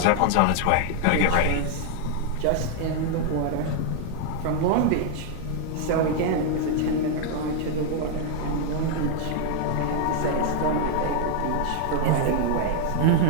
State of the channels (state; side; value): different; both; correlation 0.00